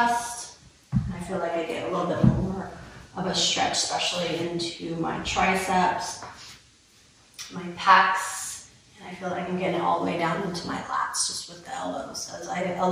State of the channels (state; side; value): identical; both; correlation 1.00